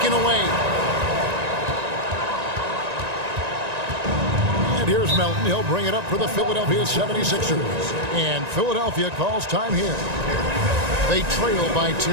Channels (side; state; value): left; late; 1.9 ms